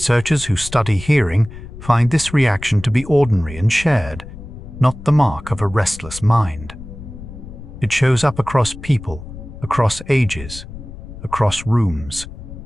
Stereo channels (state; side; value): noise; left; rumble, 14 dB below the sound